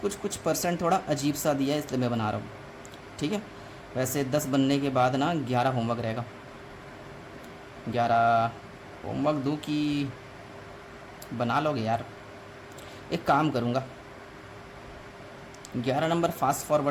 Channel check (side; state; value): both; identical; correlation 1.00